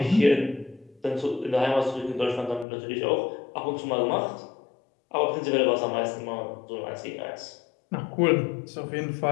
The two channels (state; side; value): drops out; right; at 2.7 s